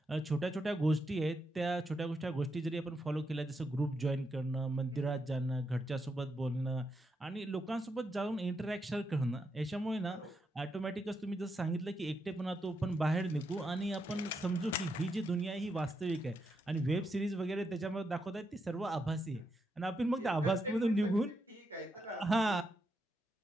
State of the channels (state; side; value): normal; both; correlation 0.82